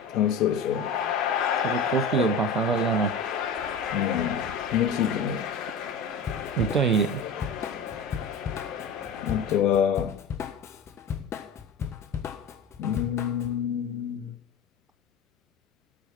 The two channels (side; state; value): right; quieter; 3.4 dB